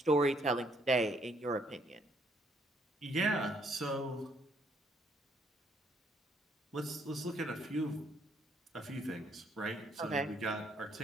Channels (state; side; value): normal; both; correlation 0.68